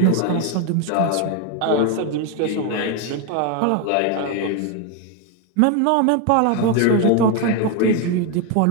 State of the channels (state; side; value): different; both; correlation 0.01